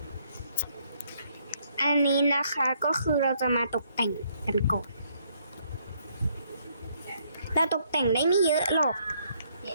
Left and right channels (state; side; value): inverted; both; correlation -0.70